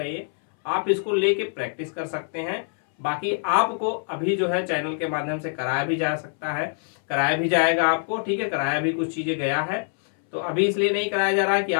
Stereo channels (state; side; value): silent; right; 62 dB below the other